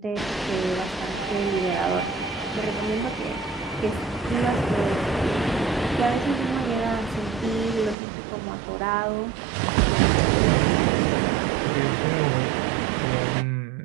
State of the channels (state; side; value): drops out; left; at 8.0 s